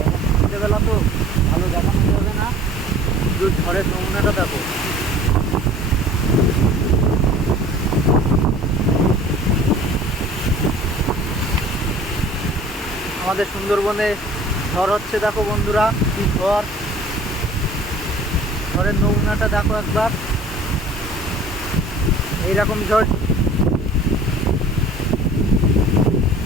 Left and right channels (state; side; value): normal; both; correlation 0.47